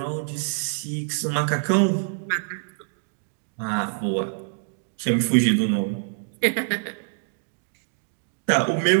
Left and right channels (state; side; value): silent; left; digital silence